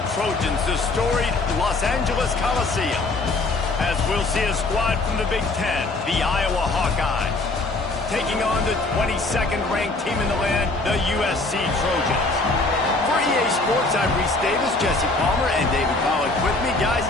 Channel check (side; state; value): right; quieter; 3.2 dB